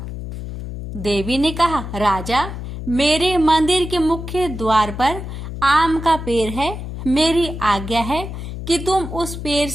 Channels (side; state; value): left; noise; hum, 8 dB below the sound